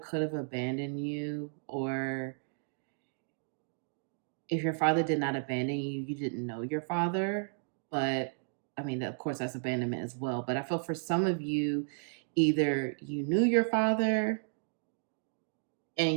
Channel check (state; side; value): silent; left; digital silence